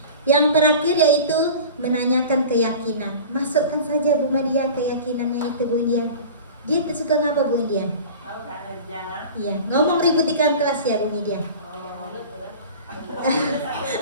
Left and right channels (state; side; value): inverted; both; correlation -0.38